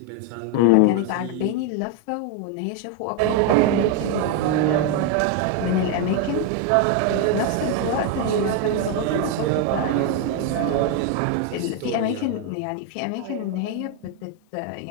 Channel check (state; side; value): different; both; correlation 0.01